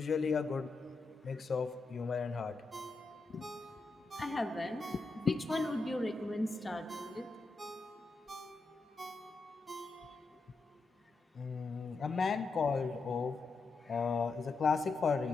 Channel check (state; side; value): quieter; right; 3.8 dB